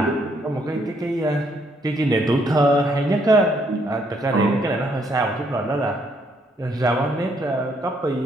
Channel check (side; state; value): both; normal; correlation 0.71